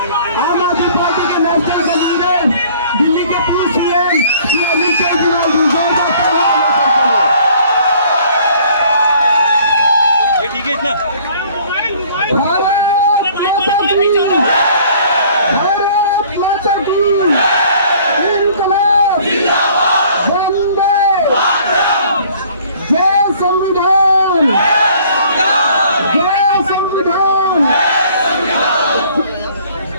आम आदमी पार्टी के नेशनल कन्वीनर, दिल्ली के पूर्व सीएम श्री अरविंद केजरीवाल ठीक है इतना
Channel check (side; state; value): both; inverted; correlation -0.55